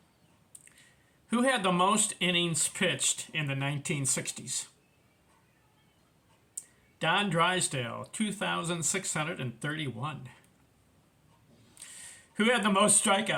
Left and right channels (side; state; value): both; identical; correlation 1.00